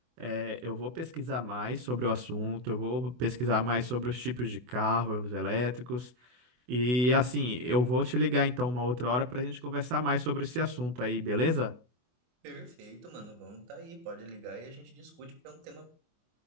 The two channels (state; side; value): late; left; 24 ms